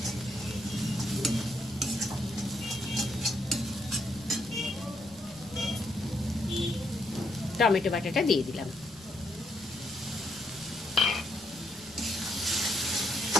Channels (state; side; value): noise; left; rumble, 27 dB below the sound